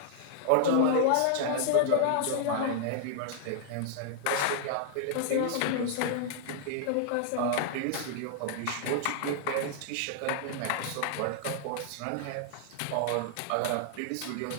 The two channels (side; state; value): both; different; correlation -0.01